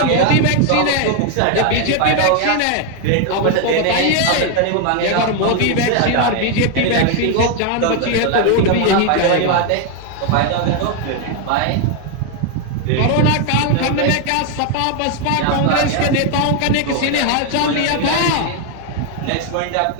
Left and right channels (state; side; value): different; both; correlation 0.01